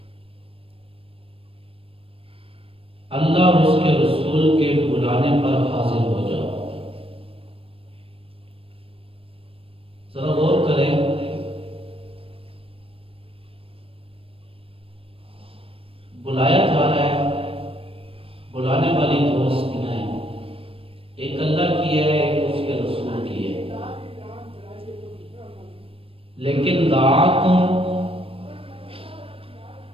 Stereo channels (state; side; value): late; left; 0.27 ms